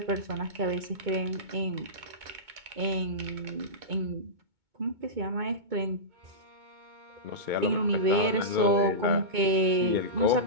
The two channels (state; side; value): late; left; 2.2 ms